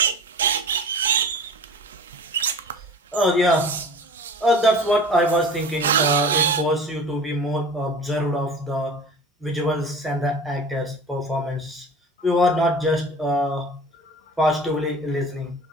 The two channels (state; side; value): normal; both; correlation 0.39